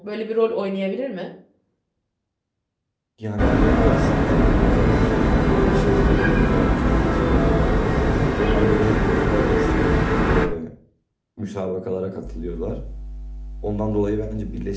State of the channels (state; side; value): identical; both; correlation 1.00